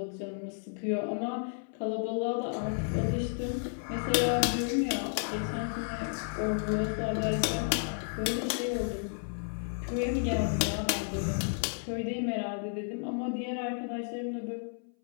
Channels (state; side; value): silent; right; 56 dB below the other